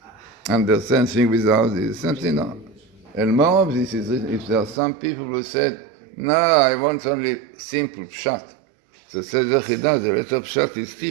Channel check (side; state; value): left; drops out; at 4.8 s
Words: understand things without this? Something no. And more of this is if there are some people who said, no, I want only simple pshat. So says the Chida, the letter pshat is